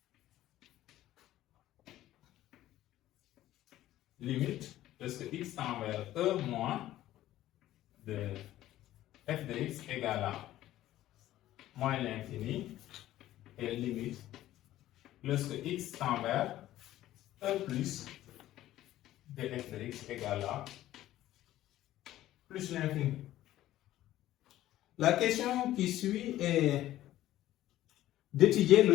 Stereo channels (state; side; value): quieter; right; 14.2 dB